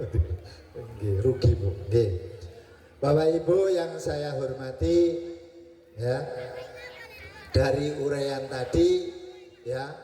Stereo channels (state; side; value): identical; both; correlation 1.00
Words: Nggih, rugi Bu. Nggih. Bapak Ibu yang saya hormati, ya, dari uraian tadi, ya,